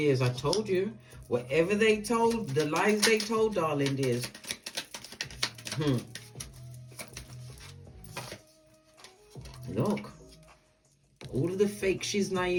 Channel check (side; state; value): both; identical; correlation 1.00